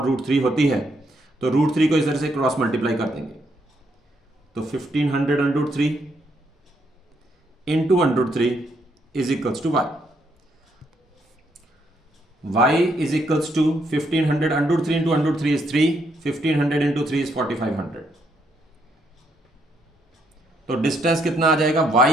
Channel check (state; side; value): normal; both; correlation 0.74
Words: होती है, तो √3 को इस तरह से क्रॉस मल्टीप्लाई कर देंगे, तो 1500 √3 into 1/√3 is equals to y. y is equals to 1500 √3 into √3 is 3, 1500 into 3 is 4500। तो डिस्टेंस कितना आ जाएगा